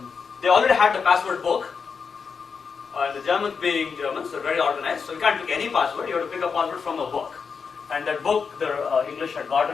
they already had the password book. The Germans being Germans, they're very organized, so you can't pick any password, you have to pick a password from a book. And that book, the English had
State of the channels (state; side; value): quieter; right; 5.7 dB